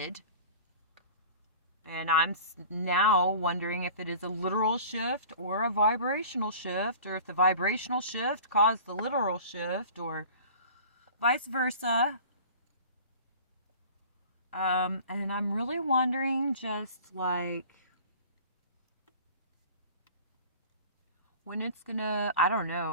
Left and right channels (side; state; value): both; inverted; correlation -0.42